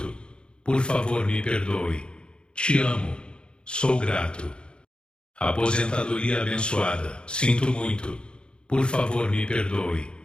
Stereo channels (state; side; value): late; right; 0.053 ms